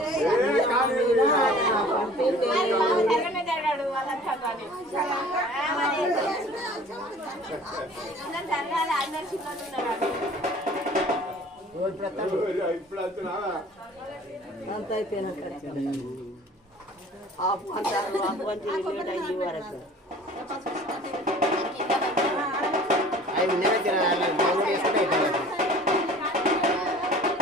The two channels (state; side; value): normal; both; correlation 0.47